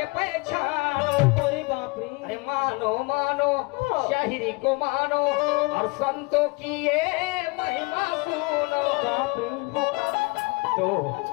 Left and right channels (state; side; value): quieter; right; 26.8 dB